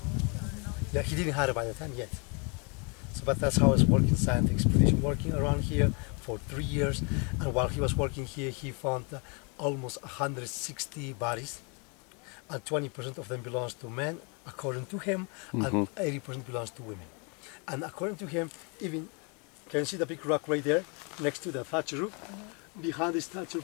Yeah, he didn't have it by the time yet. So, but that's how I was working scientific expedition, working around here for 3 years. And while he was working here, he found almost 160 bodies, and 20% of them belongs to men, according to him, and 80% belongs to women. And according to him, even, can you see the big rock right there, next to the thatch roof? Behind this thatch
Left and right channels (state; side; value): quieter; right; 34.0 dB